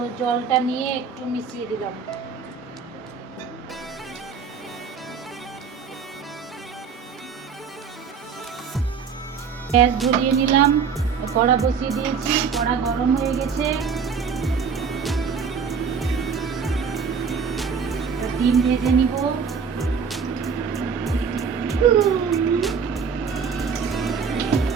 জলটা নিয়ে একটু মিশিয়ে দিলাম। গ্যাস ধরিয়ে নিলাম, কড়া বসিয়ে দিয়েছি, কড়া গরম হয়ে গেছে। ডিম ভেজে নিব।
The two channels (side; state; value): left; quieter; 6.0 dB